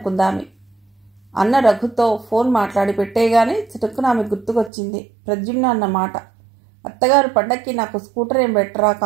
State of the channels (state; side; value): drops out; left; at 4.7 s